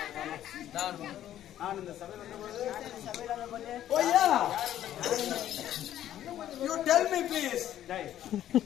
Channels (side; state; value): right; quieter; 11.8 dB